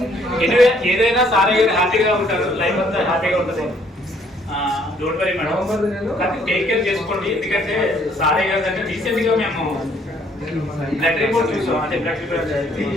ఎనివే ఏదైనా సార్ గారు హ్యాపీగా ఉంటారు, లైఫ్ అంతా హ్యాపీగా ఉంటుంది. డోంట్ వరీ మేడం, కానీ టేక్ కేర్ చేసుకోండి. ఎందుకంటే సారే గారు అంటే రీసెంట్గా మేము బ్లడ్ రిపోర్ట్ చూసాం, అంటే బ్లడ్ రిపోర్ట్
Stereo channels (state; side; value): normal; both; correlation 0.64